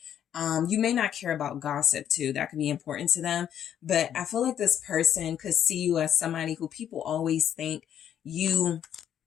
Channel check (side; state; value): right; quieter; 9.8 dB